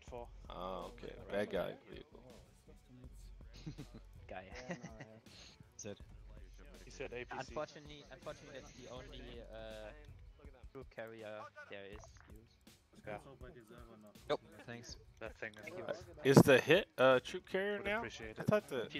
Oh, okay. Bad guy vehicle. Guy. That's it. He said APC. Unfortunately, that's the only troop carrier there is used. Yeah. Yep. Thanks. That thing is Is the hit troop carrier Would now? appreciate I it. thought the.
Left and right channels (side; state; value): both; identical; correlation 1.00